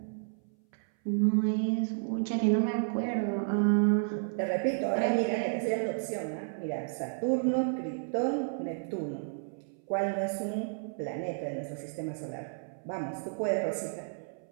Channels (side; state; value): left; silent; 57 dB below the other